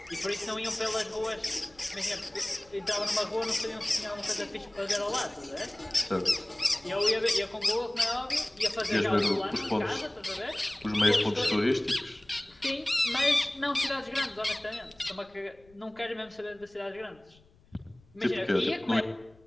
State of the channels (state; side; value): noise; left; rumble, 28 dB below the sound